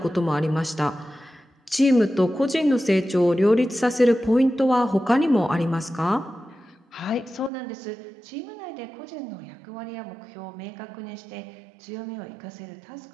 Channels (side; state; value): left; drops out; at 7.5 s